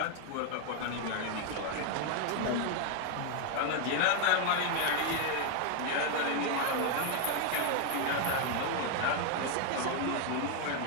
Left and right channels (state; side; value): different; both; correlation 0.01